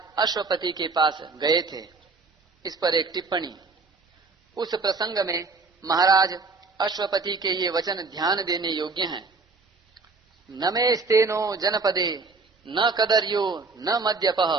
अश्वपति के पास गए थे। इस पर एक टिप्पणी। उस प्रसंग में महाराज अश्वपति के ये वचन ध्यान देने योग्य हैं। न मे स्तेनो जनपदे न कदर्यो न मद्यपः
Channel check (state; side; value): quieter; left; 4.1 dB